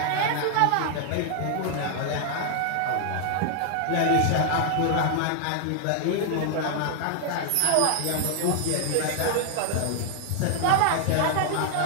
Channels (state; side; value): different; both; correlation 0.00